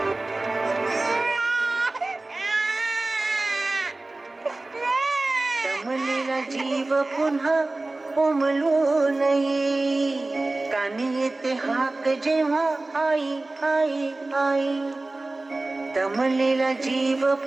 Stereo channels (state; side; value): quieter; left; 3.0 dB